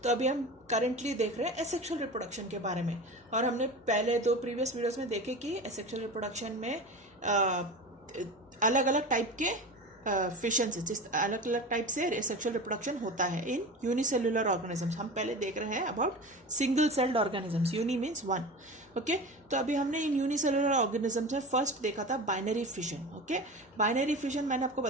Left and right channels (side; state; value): both; normal; correlation 0.31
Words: अभी हम करेंटली देख रहे हैं एसेक्सुअल रिप्रोडक्शन के बारे में। और हमने पहले दो प्रीवियस वीडियोस में देखे कि एसेक्सुअल रिप्रोडक्शन में अलग अलग टाइप के फिशन से, जिस अलग अलग टाइप से सेक्सुअल रिप्रोडक्शन होता है इन यूनिसेल्युलर ऑर्गेनिजम्स। हम पहले देख रहे हैं about single celled organisms. Uni means one. Okay, तो अभी हमने इन यूनिसेल्युलर ऑर्गेनिजम्स में फर्स्ट देखा था binary fission. Okay, binary fission मैंने आपको